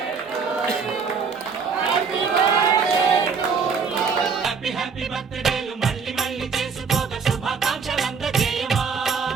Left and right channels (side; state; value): left; quieter; 5.6 dB